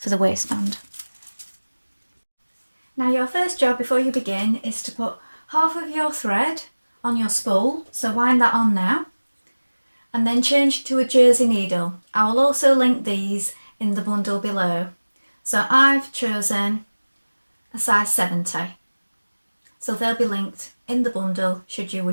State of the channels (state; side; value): inverted; both; correlation -1.00